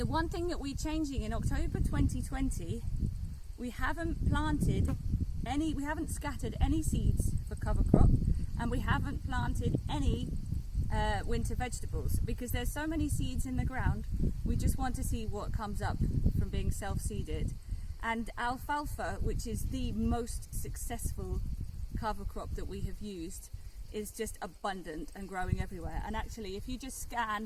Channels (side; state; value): both; identical; correlation 1.00